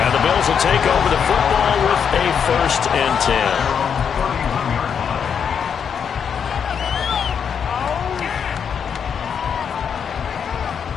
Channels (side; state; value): right; quieter; 7.3 dB